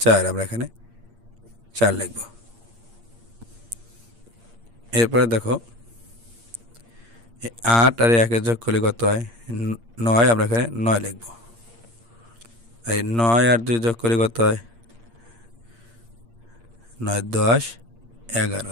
আমরা এখানে 4 লিখব। এরপরে দেখো 8 আর 1 এর যোগ করলে কত হয় 9, আমরা এখানে 9 লিখব। এই 9 আর 2 যোগ করলে কত হয় 9 10 11,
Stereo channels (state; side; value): late; left; 8.6 ms